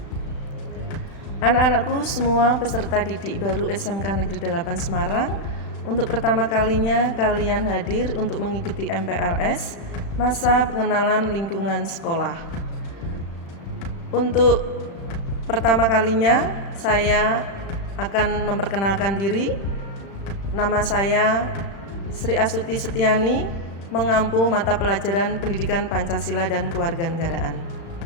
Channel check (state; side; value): late; right; 35 ms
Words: Anak-anakku semua peserta didik baru SMK Negeri 8 Semarang, untuk pertama kalinya kalian hadir untuk mengikuti MPLS, masa pengenalan lingkungan sekolah. Untuk pertama kalinya saya akan memperkenalkan diri. Nama saya Sri Astuti Setiani, mengampu mata pelajaran Pendidikan Pancasila dan Kewarganegaraan.